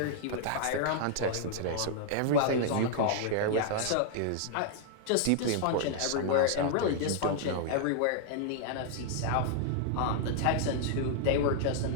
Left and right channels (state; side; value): different; both; correlation 0.00